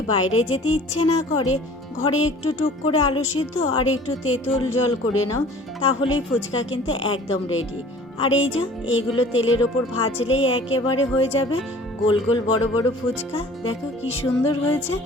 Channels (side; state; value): both; normal; correlation 0.48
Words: বাইরে যেতে ইচ্ছে না করে, ঘরে একটু টুক করে আলু সিদ্ধ আর একটু তেঁতুল জল করে নাও, তাহলেই ফুচকা কিন্তু একদম রেডি। আর এই যে এইগুলো তেলের ওপর ভাজলেই একেবারে হয়ে যাবে গোল গোল বড় বড় ফুচকা। দেখো কি সুন্দর হয়েছে,